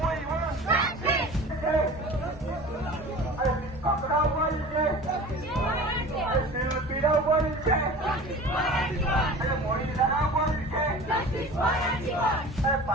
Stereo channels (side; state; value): both; normal; correlation 0.39